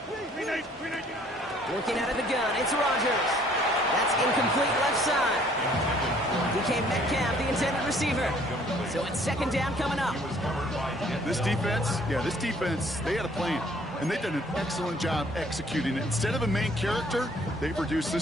Working out of the gun, it's Rodgers. That's incomplete left side. Became Metcalf, the intended receiver. So it's 2nd down coming up. This defense, they had a plan. And they've done an excellent job executing it. Instead of a main character, they've reduced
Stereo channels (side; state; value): both; normal; correlation 0.59